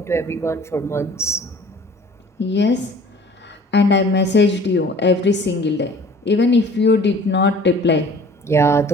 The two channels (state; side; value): normal; both; correlation 0.49